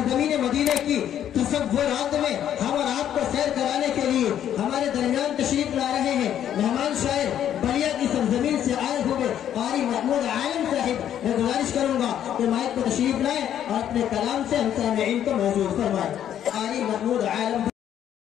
مدینے کی تصورات میں ہم اور آپ کو سیر کرانے کے لیے ہمارے درمیان تشریف لا رہے ہیں مہمان شاعر بلیا کی سرزمین سے آئے ہوئے قاری محمود عالم صاحب۔ میں گزارش کروں گا کہ مائک کو تشریف لائیں اور اپنے کلام سے ہم سامعین کو موجود فرمائیں۔ قاری محمود عالم۔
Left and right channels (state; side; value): quieter; right; 10.3 dB